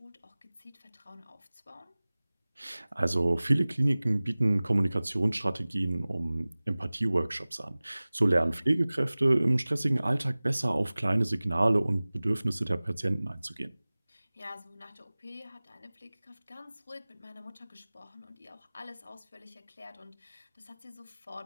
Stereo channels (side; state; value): both; inverted; correlation -0.99